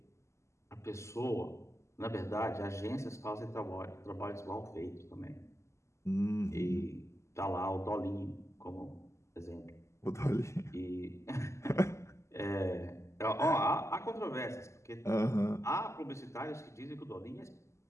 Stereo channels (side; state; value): right; late; 0.13 ms